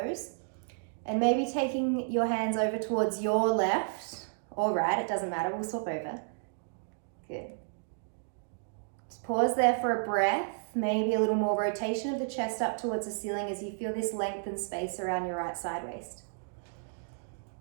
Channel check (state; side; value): silent; left; digital silence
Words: And maybe taking your hands over towards your left or right, it doesn't matter, we'll swap over. Good. Just pause there for a breath. Maybe a little more rotation of the chest up towards the ceiling as you feel this length and space around your right side waist.